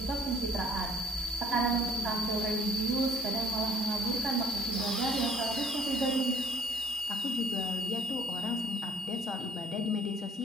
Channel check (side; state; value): both; normal; correlation 0.57